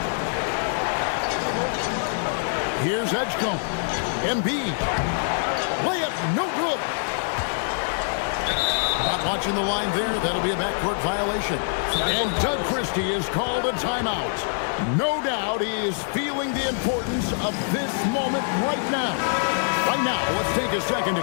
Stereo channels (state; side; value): silent; right; digital silence